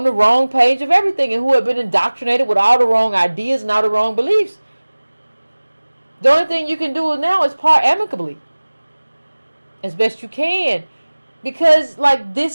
the wrong page of everything and who had been indoctrinated with all the wrong ideas and all the wrong beliefs. The only thing you can do now is part amicably. As best you can. Because, like,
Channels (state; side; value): inverted; both; correlation -1.00